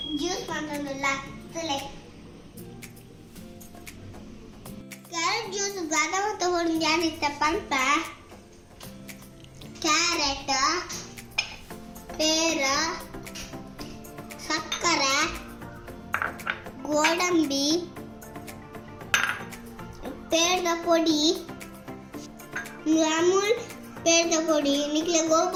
juice ಮಾಡೋದಿಲ್ಲ. ಕ್ಯಾರೆಟ್ ಜ್ಯೂಸ್ ಬಾದಾಮ ತಗೊಂಡು ಏನಿತ್ತಪ್ಪ ಅಂತ ಕ್ಯಾರೆಟ್, ಪೇರ, ಸಕ್ಕರೆ, ಗೋಡಂಬಿ, ಪೇರದ ಪೊಡಿ, ಅಮೂಲ್ ಪೇರದ ಪೊಡಿ, ನಿಕ್ಲೆ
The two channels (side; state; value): both; identical; correlation 1.00